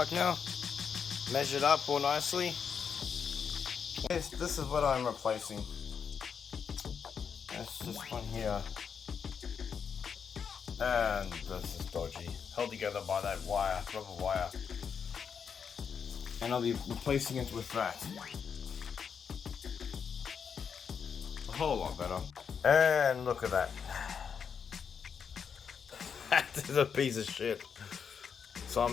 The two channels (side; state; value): right; quieter; 6.8 dB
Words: now. Measured up all nicely. This is what I'm replacing. That's this one here, and this is dodgy, held together by that wire, rubber wire. And I'll be replacing it with that. A whole lot better. And look at that. That is a piece of shit. So